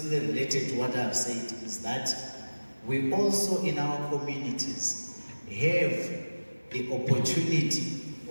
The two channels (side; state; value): both; inverted; correlation -1.00